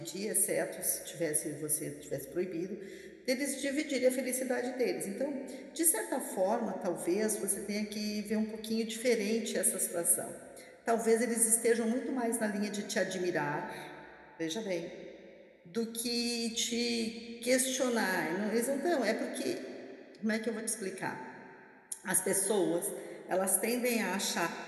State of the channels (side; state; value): both; identical; correlation 1.00